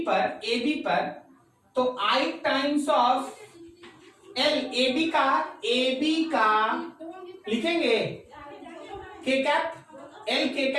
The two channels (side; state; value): both; identical; correlation 1.00